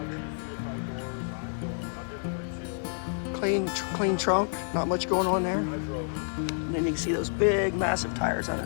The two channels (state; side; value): silent; right; 58 dB below the other